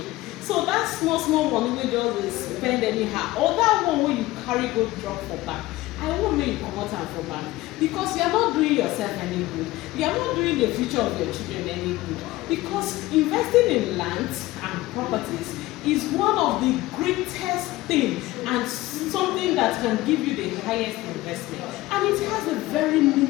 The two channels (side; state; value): right; quieter; 18.1 dB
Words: So that small money wey just dey spend anyhow, or that one wey you carry go drop for bank, I won't make you comot am for bank, because you are not doing yourself any good. You are not doing the future of your children any good. Because investing in land and properties is one of the greatest things and something that can give you the highest investment. And it has a very